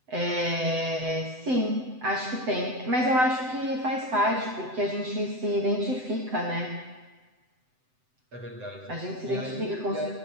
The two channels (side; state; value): left; late; 7.9 ms